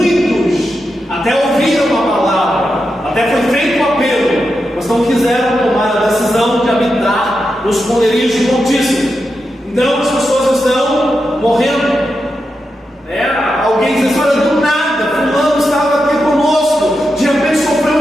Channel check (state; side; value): normal; both; correlation 0.87